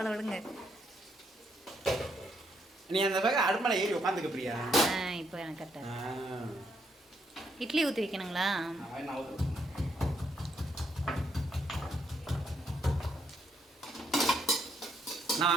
விடுங்க. நீ அந்த பக்கம் அடுமலை ஏறி உட்காந்துக்க பிரியா. இப்போ எனக்கு கரெக்டாக. இட்லி ஊற்றி வைக்கணுங்களா?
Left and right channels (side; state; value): both; normal; correlation 0.75